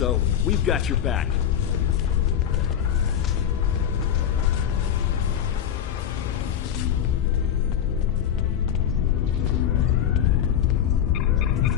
We've got your back.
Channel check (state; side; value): quieter; right; 9.3 dB